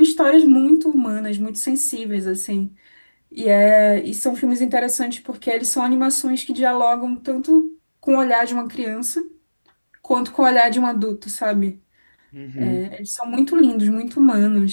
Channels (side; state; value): both; inverted; correlation -1.00